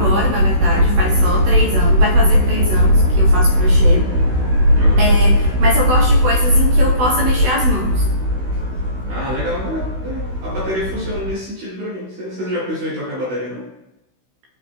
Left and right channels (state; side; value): late; left; 16 ms